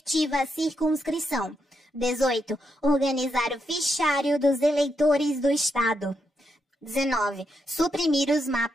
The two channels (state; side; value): normal; both; correlation 0.81